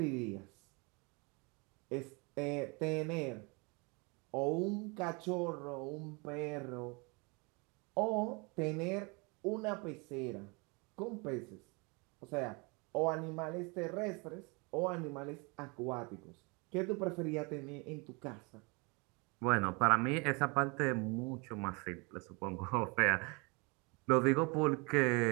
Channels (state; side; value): quieter; left; 29.6 dB